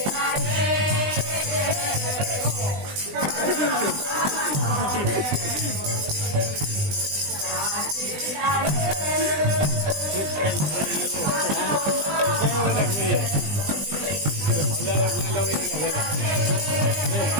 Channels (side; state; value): left; late; 20 ms